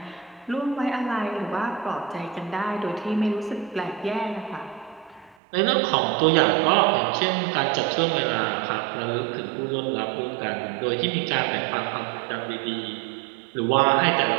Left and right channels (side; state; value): left; drops out; at 5.4 s